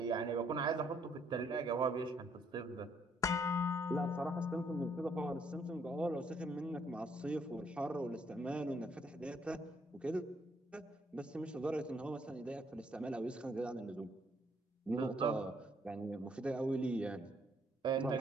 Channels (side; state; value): both; normal; correlation 0.68